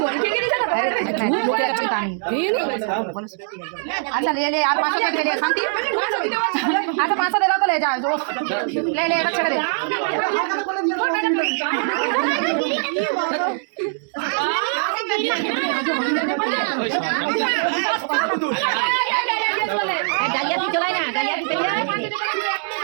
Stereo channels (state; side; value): silent; left; digital silence